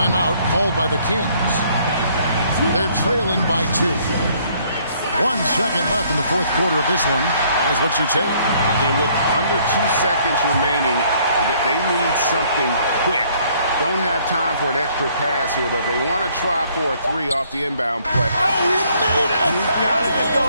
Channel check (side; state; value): both; inverted; correlation -0.64